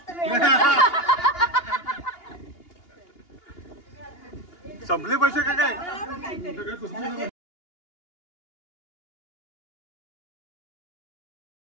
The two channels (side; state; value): right; late; 2.8 ms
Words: मिळालं. संपले पैसे का काय.